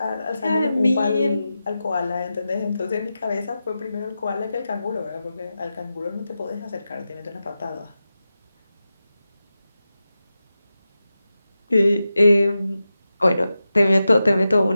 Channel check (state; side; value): inverted; both; correlation -0.92